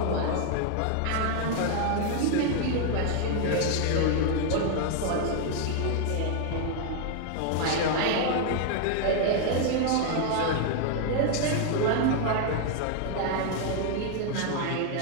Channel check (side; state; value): both; different; correlation 0.00